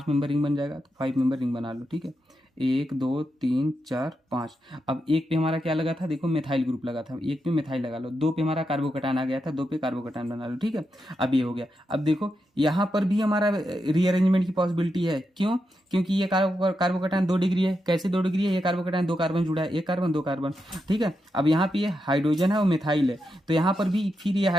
मेंबर रिंग बन जाएगा। तो 5 मेंबर रिंग बना लो, ठीक है। 1 2 3 4 5। अब एक पे हमारा क्या लगा था, देखो मिथाइल ग्रुप लगा था, एक पे मिथाइल लगा लो। 2 पे हमारा कार्बोकैटायन आ गया था, 2 पे कार्बोकैटायन बना लो, ठीक है। अब ये हो गया। अब देखो यहाँ पर भी हमारा रीअरेंजमेंट की पॉसिबिलिटी है, क्यों, क्योंकि ये कार्बोकैटायन 2 डिग्री है। कैसे 2 डिग्री है, ये कार्बोकैटायन 2 कार्बन जुड़ा है, 1 कार्बन 2 कार्बन, ठीक है। अब यहाँ पे ये हाइड्रोजन है और मिथाइल है, तो यहाँ पर भी फिर ये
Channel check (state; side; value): normal; both; correlation 0.85